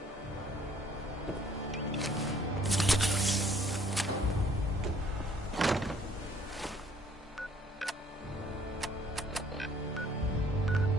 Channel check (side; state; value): both; normal; correlation 0.60